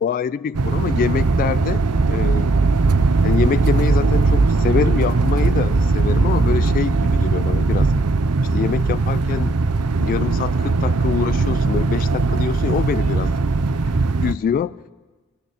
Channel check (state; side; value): normal; both; correlation 0.69